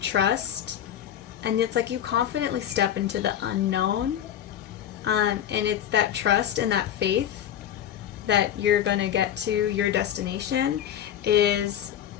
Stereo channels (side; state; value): right; quieter; 10.4 dB